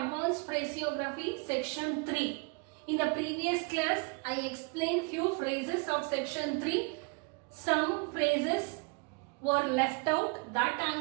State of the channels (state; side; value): quieter; left; 32.2 dB